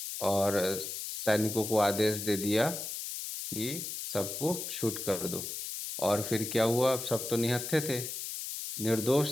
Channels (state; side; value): noise; left; hiss, 6 dB below the sound